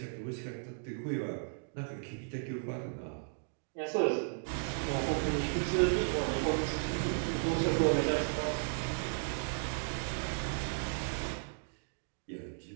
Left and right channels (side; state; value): left; silent; digital silence